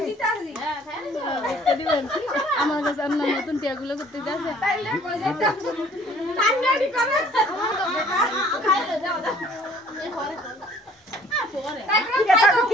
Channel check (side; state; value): both; normal; correlation 0.56